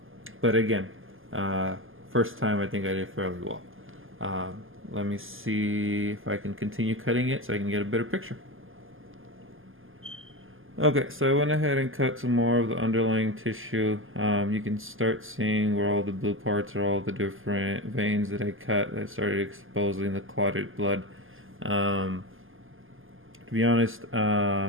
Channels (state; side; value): late; left; 0.59 ms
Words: again, first time I think I did fairly well. Let me see if I can continue cutting it so I can get a better picture. Okay, so I went ahead and cut some more of the underlying tissue. You can start seeing where all the blue parts are, all the different veins that I cut that started exposing the clotted blood. To be honest,